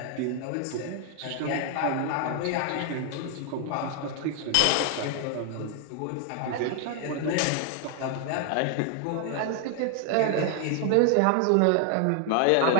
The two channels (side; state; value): both; different; correlation 0.01